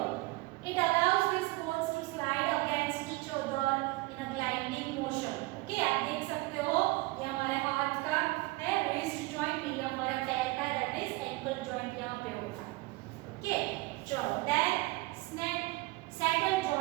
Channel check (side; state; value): left; quieter; 22.2 dB